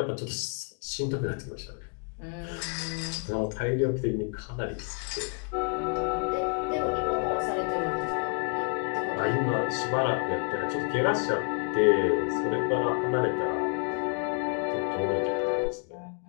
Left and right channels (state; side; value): quieter; right; 38.7 dB